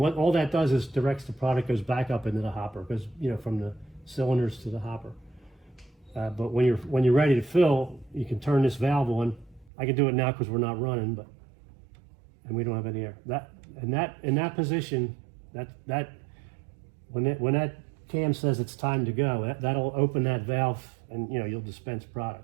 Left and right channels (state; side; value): drops out; left; at 9.7 s